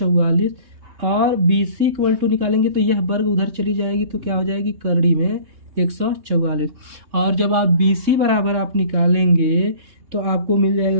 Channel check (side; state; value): left; late; 3.2 ms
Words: और बी सी इक्वल टू निकालेंगे तो यह वर्ग उधर चली जाएगी, तो क्या हो जाएगी, करड़ी में 144। और जब आप BC बराबर आप निकालेंगे तो आपको मिल